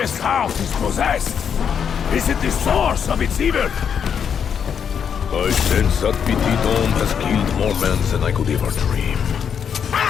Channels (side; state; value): right; quieter; 7.6 dB